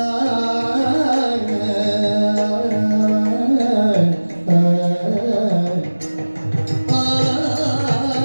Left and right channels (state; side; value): inverted; both; correlation -1.00